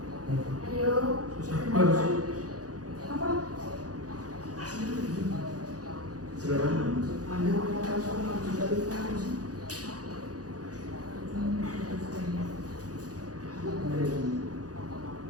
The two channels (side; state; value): left; late; 0.67 ms